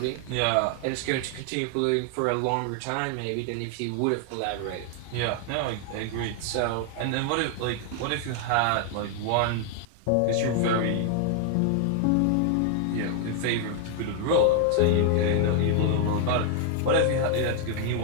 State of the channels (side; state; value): both; different; correlation 0.00